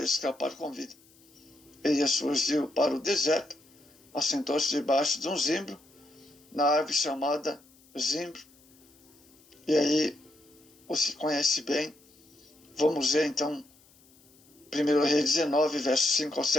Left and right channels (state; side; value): noise; left; hiss, 28 dB below the sound